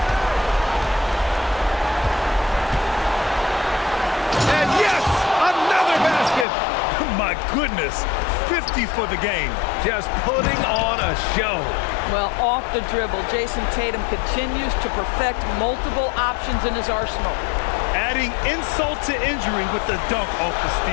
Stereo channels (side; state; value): right; drops out; at 6.5 s